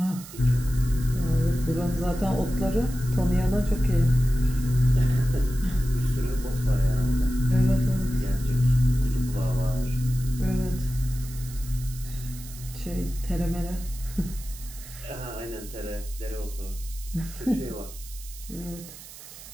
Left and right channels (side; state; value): right; noise; hiss, 16 dB below the sound